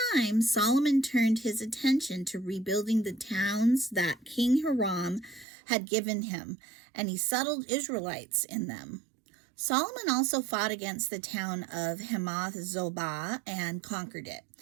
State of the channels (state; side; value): drops out; left; at 5.5 s